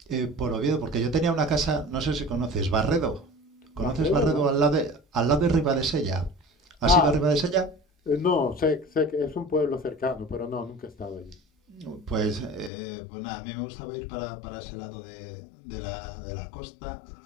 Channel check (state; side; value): drops out; right; at 12.7 s